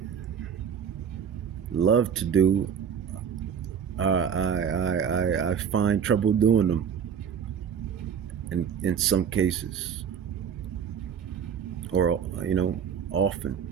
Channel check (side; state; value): left; quieter; 7.6 dB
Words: love to do, I find trouble doing them in some cases, or often.